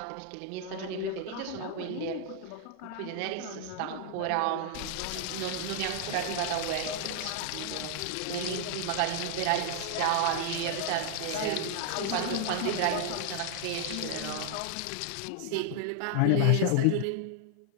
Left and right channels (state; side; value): different; both; correlation 0.00